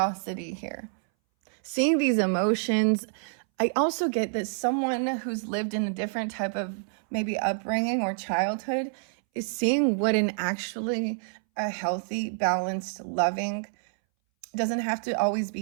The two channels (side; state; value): left; silent; 60 dB below the other